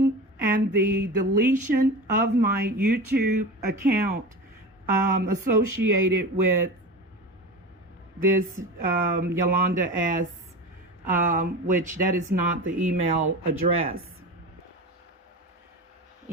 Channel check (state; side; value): normal; both; correlation 0.29